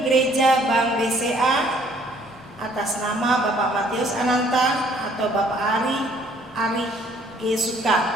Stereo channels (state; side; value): normal; both; correlation 0.61